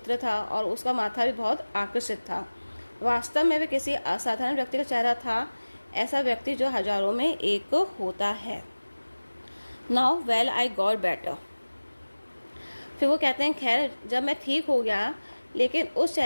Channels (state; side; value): inverted; both; correlation -1.00